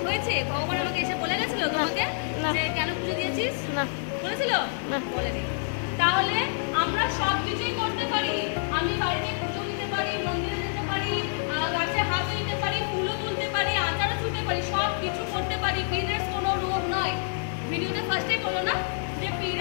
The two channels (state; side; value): silent; right; 60 dB below the other